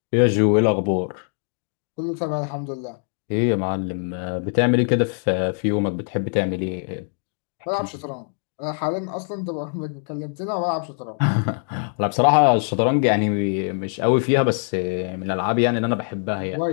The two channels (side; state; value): right; silent; 57 dB below the other